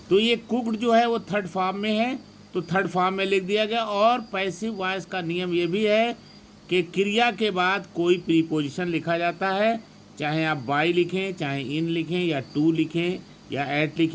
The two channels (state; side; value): identical; both; correlation 1.00